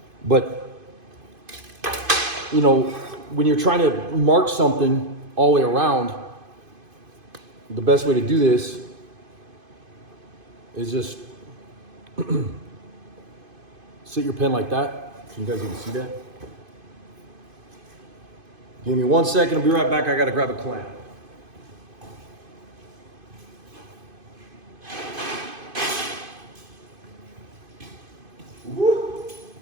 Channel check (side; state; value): left; late; 2.5 ms